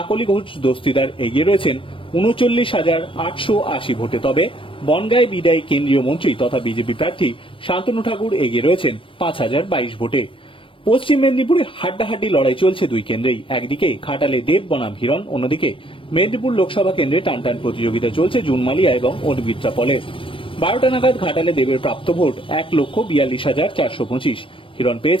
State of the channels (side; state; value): right; late; 0.25 ms